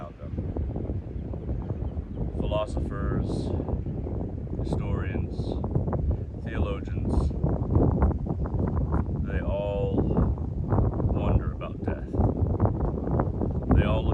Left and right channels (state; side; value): identical; both; correlation 1.00